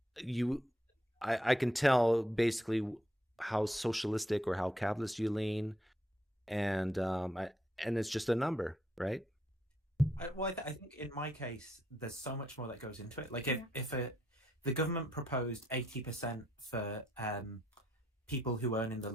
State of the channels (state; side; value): normal; both; correlation 0.74